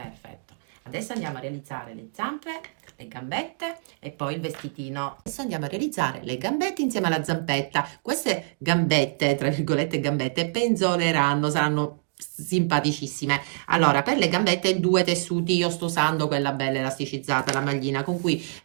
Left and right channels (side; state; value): left; silent; digital silence